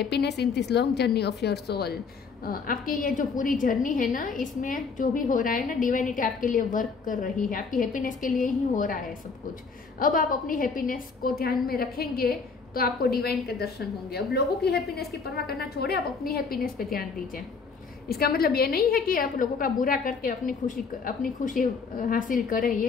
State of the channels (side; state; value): right; quieter; 5.0 dB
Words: in this long journey of your soul. आपकी ये जो पूरी जर्नी है ना, इसमें जो भी हो रहा है ना, डिवाइनिटी आपके लिए वर्क कर रही है, आपकी हैप्पीनेस के लिए ही हो रहा है सब कुछ। अब आप अपनी हैप्पीनेस को ध्यान में रखेंगे तो आपको डिवाइन के दर्शन होंगे। अब लोगों की हैप्पीनेस की परवाह करना छोड़े, आप अपनी हैप्पीनेस पे ध्यान दीजिए। इसका मतलब ये नहीं है कि आप लोगों का बुरा करके अपनी खुशी हासिल करें,